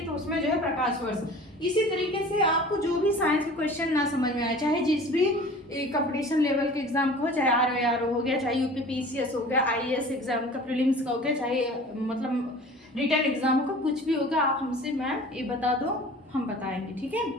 तो उसमें जो है प्रकाश वर्ष। इसी तरीके से आपको जो भी साइंस के क्वेश्चन ना समझ में आए, चाहे जिस भी कंपटीशन लेवल के एग्जाम का हो, चाहे आरओ हो गया, चाहे यूपीपीसीएस हो गया, आईएएस एग्जाम का प्रीलिम्स का हो गया, चाहे मतलब रिटर्न एग्जाम का कुछ भी होगा, आप हमसे मैम ये बता दो, हम बताएंगे। ठीक है,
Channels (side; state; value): both; normal; correlation 0.43